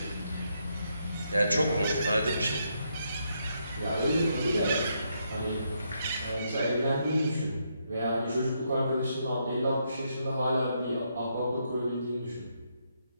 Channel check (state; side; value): inverted; both; correlation -0.78